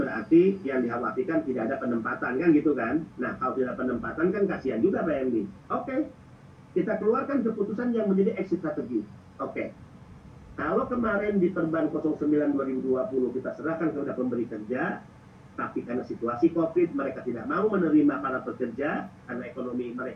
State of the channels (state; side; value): identical; both; correlation 1.00